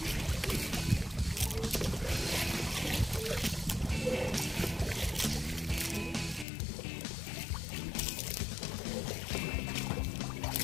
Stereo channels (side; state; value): right; drops out; at 6.5 s